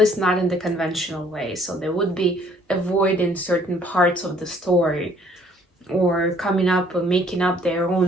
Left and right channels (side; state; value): both; normal; correlation 0.60